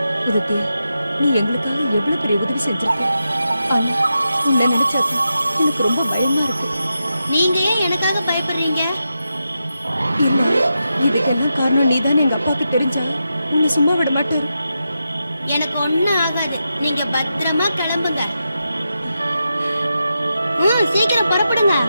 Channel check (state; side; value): inverted; both; correlation -0.88